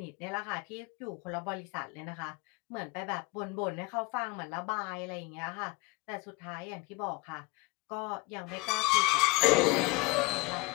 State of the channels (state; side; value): quieter; right; 24.7 dB